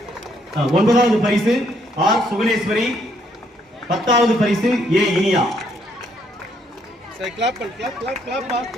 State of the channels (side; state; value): both; normal; correlation 0.71